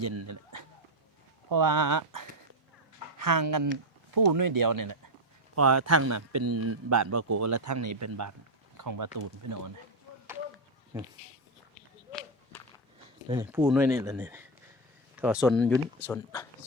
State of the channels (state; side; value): normal; both; correlation 0.06